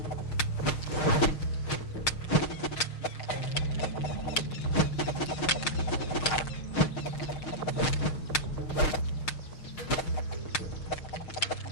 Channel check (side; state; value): right; late; 6.5 ms